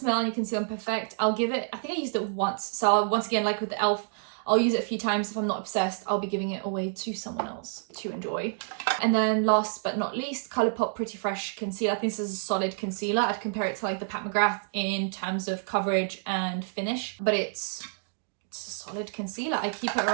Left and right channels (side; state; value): left; silent; digital silence